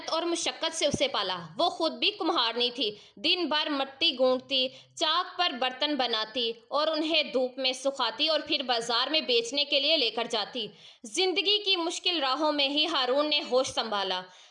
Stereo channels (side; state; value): both; identical; correlation 1.00